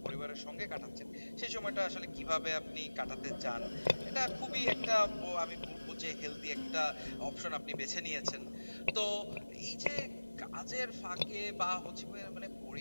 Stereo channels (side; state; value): both; inverted; correlation -1.00